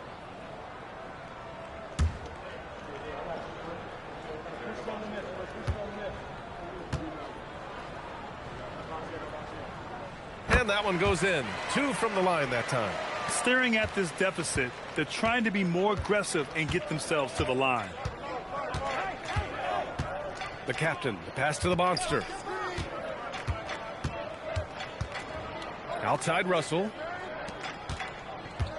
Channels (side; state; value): both; identical; correlation 1.00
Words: And that one goes in. 2 from the line that time. Staring at this deficit, they're trying to be more aggressive and get themselves to the line. The captain, the pass to the monster. Outside Russell.